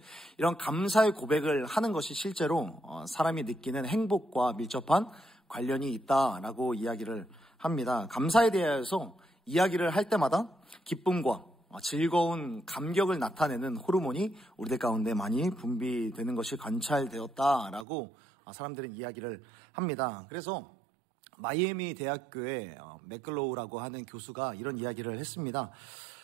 이런 감사의 고백을 하는 것이 실제로 사람이 느끼는 행복과 밀접한 관련이 있다라고 이야기를 합니다. 감사에 대해서 이야기를 할 때마다 기쁨과 즐거운 감격을 나타내는 호르몬이 우리들 가운데 많이 분비되는 것이 관찰되었다라고 사람들은 이야기를 합니다. 그래서 마이애미 대학교의 맥글로우라고 하는 교수가 이런 이야기를 했습니다.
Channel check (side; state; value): left; drops out; at 17.9 s